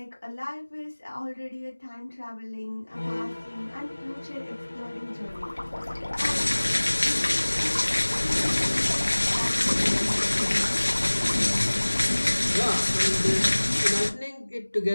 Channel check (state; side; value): inverted; both; correlation -1.00